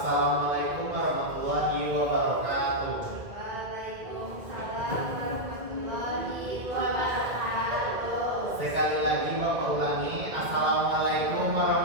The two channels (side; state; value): left; late; 2.0 ms